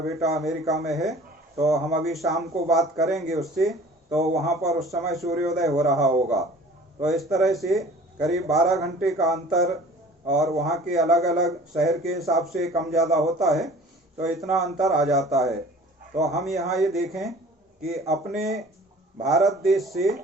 बेटा अमेरिका में है तो हम अभी शाम को बात करेंगे उससे, तो वहाँ पर उस समय सूर्योदय हो रहा होगा। तो इस तरह से करीब 12 घंटे का अंतर, और वहाँ के अलग अलग शहर के हिसाब से कम ज़्यादा होता है, तो इतना अंतर आ जाता है। तो हम यहाँ ये देखें कि अपने भारत देश से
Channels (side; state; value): both; normal; correlation 0.46